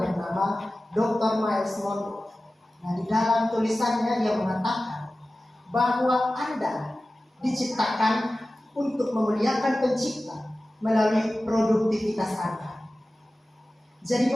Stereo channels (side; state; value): both; normal; correlation 0.96